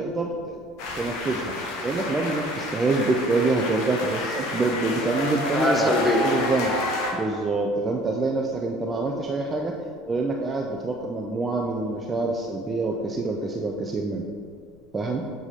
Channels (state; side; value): noise; left; rumble, 28 dB below the sound